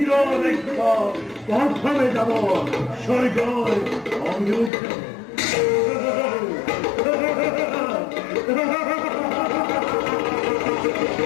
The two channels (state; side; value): drops out; right; at 4.7 s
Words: দেখব প্রথমে যাব স্বর্গ অভিমুখে